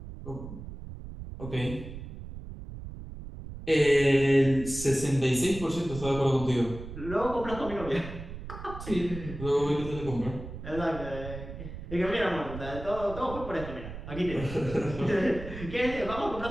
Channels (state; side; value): noise; right; rumble, 11 dB below the sound